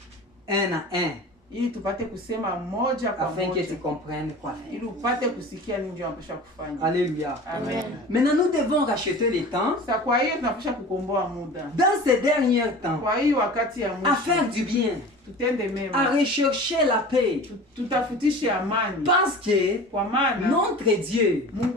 un à un, ili tupate kusema moja kwa afin que tu moja comprennes quoi faire. ili upate kusikia nini ndio unapaswa kufanya. Alléluia. Amen. Maintenant, nous devons racheter le temps Sasa kwa hiyo tunapaswa kukomboa muda. dans ces derniers temps, Kwa hiyo wakati ya à faire mwisho du bien, tutende à mema. rechercher la paix. Tutafutishe amani. Parce que Kwa maana notre Dieu,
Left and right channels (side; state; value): both; normal; correlation 0.37